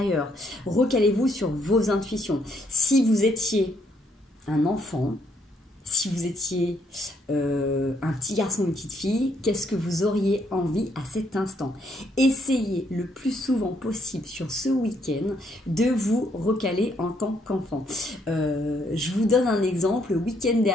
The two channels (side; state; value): both; normal; correlation 0.71